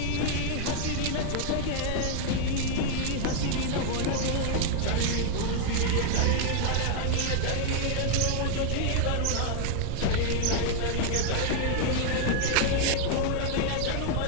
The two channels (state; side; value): different; both; correlation 0.00